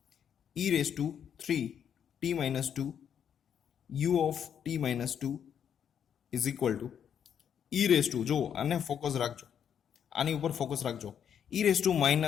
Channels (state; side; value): quieter; right; 8.4 dB